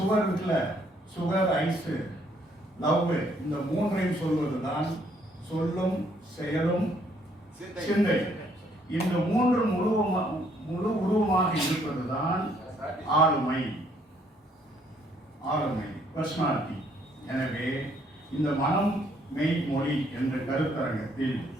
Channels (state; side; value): normal; both; correlation 0.67